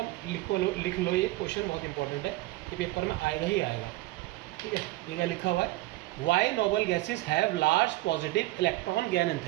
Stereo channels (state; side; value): quieter; left; 18.8 dB